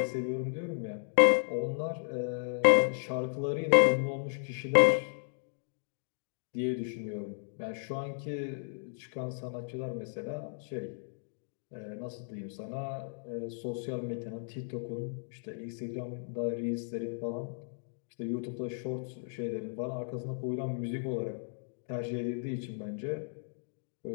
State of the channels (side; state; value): right; silent; digital silence